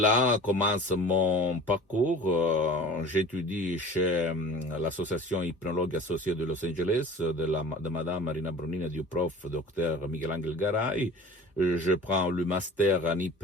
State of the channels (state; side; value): normal; both; correlation 0.41